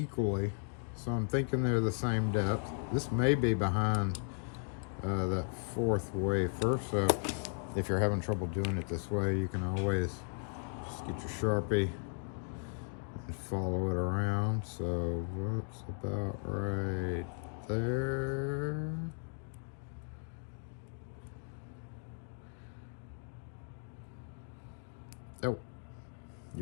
so I'm thinking they're the same depth. This may be behind that 4th wafer, so if you're having trouble doing it this way, you can always just get your Sharpie and follow it around. So that's about right there. Oh,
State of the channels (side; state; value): right; silent; 54 dB below the other